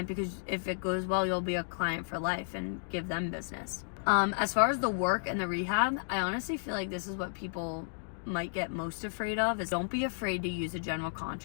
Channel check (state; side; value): silent; right; digital silence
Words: because if it goes well, you'll be a client for life and give them business. As far as the work and the rehab, I honestly feel like this is what people might get most afraid of, is don't be afraid to use a general